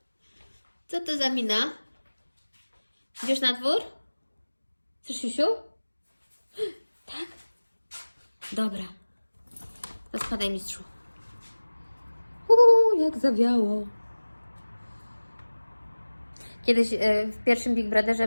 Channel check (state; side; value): inverted; both; correlation -1.00